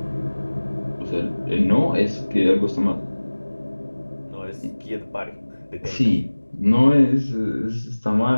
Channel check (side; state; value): both; inverted; correlation -1.00